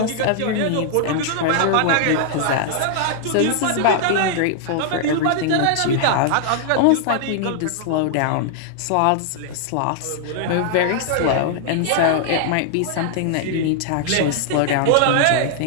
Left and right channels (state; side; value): different; both; correlation 0.00